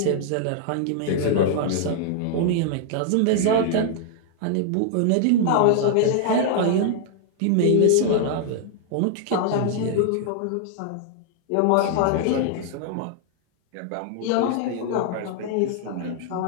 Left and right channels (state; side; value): different; both; correlation 0.00